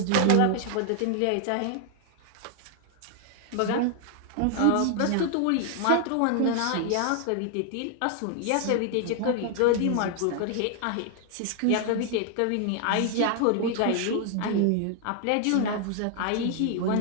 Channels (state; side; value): different; both; correlation 0.00